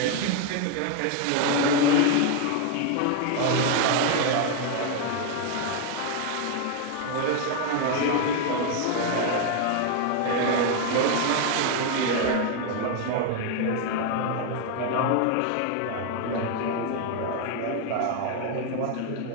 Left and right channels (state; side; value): different; both; correlation 0.01